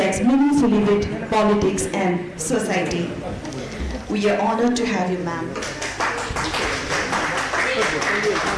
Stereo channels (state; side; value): identical; both; correlation 1.00